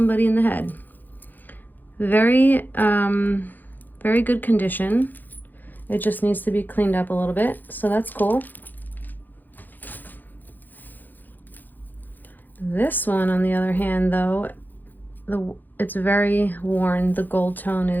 in the head. Very, very good condition. It just needs to be cleaned up a little bit, so that's cool. This one, on the other hand, though, it's very worn. The gold tone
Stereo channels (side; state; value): right; late; 0.086 ms